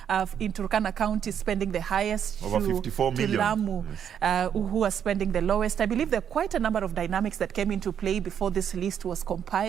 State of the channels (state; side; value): quieter; left; 8.6 dB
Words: in Turkana County spending the highest, over 54 million. To Lamu, yes. Who are spending the lowest. I believe there are quite a number of dynamics that came into play before this list was